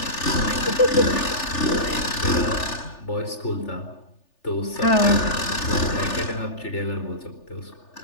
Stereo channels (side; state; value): right; late; 3.4 ms